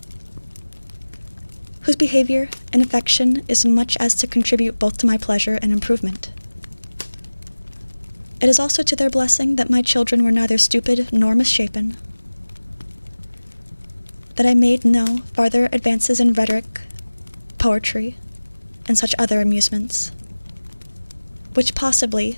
whose behavior and affection is much as to contribute both to my pleasure and improvement. It is also to their blessing that my children were neither stupid nor misshapen, that I made no farther advances in rhetoric, poetry, and such other amusements, which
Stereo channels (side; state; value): both; inverted; correlation -1.00